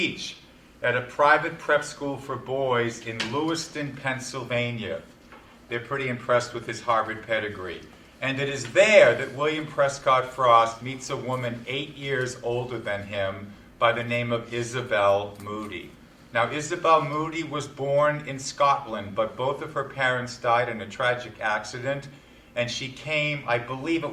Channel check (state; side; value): identical; both; correlation 1.00